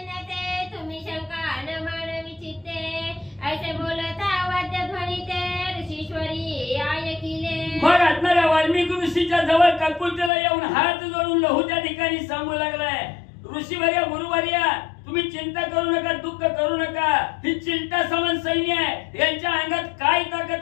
तुम्ही शंका न मानवी चित्ते, ऐसे बोलता वाद्य ध्वनीते ऋषीश्वरी ऐकिले. मग असणाऱ्या वाल्मिक ऋषीच्या जवळ काकुलतेला येऊन हात जोडून लहू त्या ठिकाणी सांगू लागलाय, ऋषीवर्या गुरुवर्या तुम्ही चिंता करू नका, दुःख करू नका, ही चिंता समान सैन्य आहे, यांच्या अंगात काय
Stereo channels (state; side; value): drops out; right; at 10.3 s